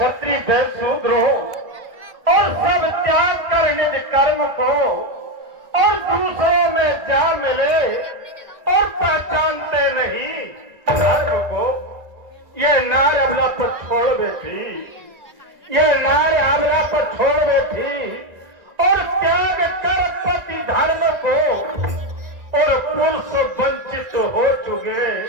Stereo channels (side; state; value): left; late; 1.9 ms